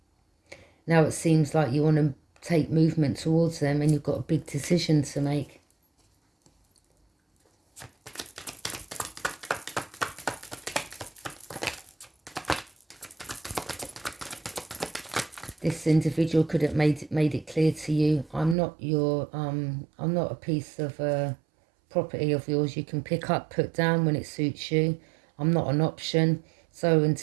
Now it seems like you want to take movement towards them and you've got a big decision to make. This individual could have made it clear to you, I'm not a piece of property of yours you can pick up, put down when it suits you. I'm not an option. So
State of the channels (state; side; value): drops out; left; at 18.6 s